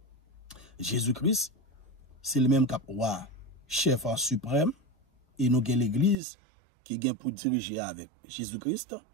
Jésus-Christ, c'est le même cap roi, chef en suprême, et nous avons l'église qui vient pour diriger avec Jésus-Christ.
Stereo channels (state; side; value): drops out; left; at 6.2 s